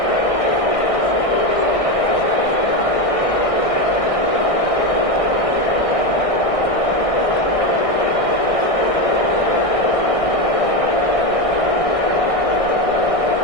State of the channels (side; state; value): right; late; 1.6 ms